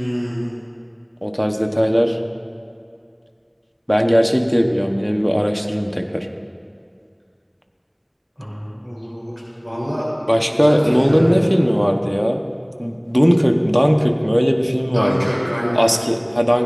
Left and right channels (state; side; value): identical; both; correlation 1.00